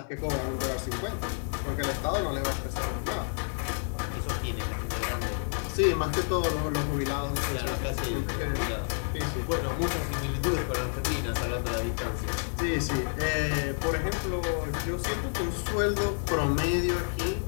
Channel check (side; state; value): right; silent; 58 dB below the other